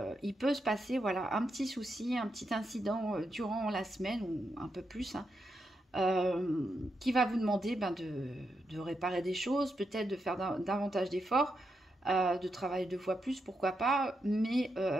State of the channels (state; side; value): normal; both; correlation 0.84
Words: il peut se passer voilà, un petit souci, un petit incident durant la semaine ou un peu plus hein, qui va vous demander de réparer des choses, peut-être de faire davantage d'efforts, de travailler 2 fois plus, pourquoi pas, mais